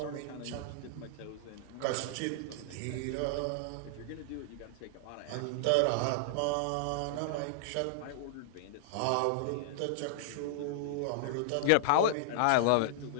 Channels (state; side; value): different; both; correlation -0.01